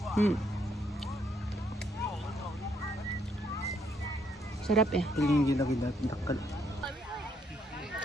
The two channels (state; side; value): normal; both; correlation 0.72